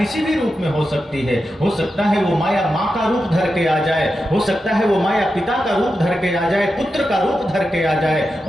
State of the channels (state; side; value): normal; both; correlation 0.89